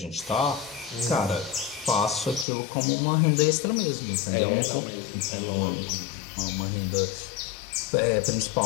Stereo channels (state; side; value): drops out; right; at 2.5 s